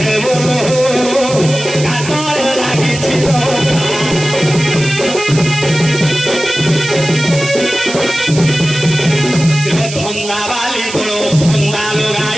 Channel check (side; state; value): right; noise; hiss, 9 dB below the sound